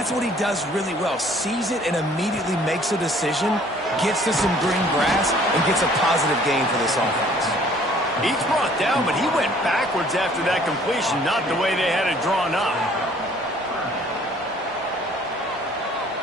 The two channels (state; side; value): normal; both; correlation 0.56